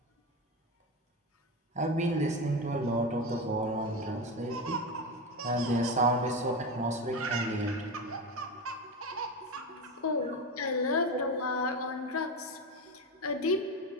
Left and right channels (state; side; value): normal; both; correlation 0.19